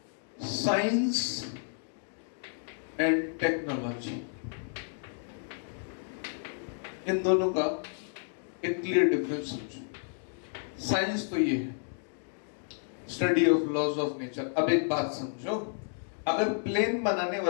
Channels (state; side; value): silent; right; digital silence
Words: साइंस एंड टेक्नोलॉजी, इन दोनों का एक क्लियर डिफरेंस समझो। साइंस तो ये है, study of laws of nature. अब एक बात समझो, अगर प्लेन बनाने